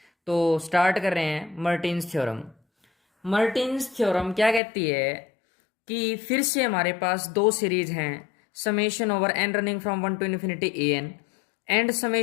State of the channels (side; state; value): right; drops out; at 4.6 s